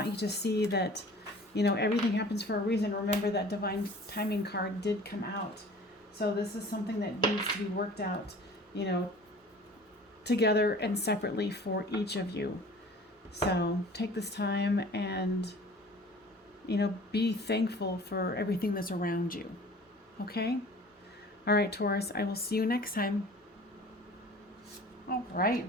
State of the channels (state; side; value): normal; both; correlation 0.46